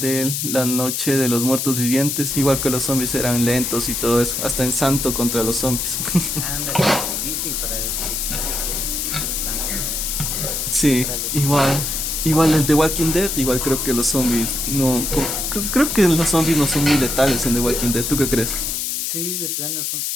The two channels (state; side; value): noise; left; hiss, 2 dB below the sound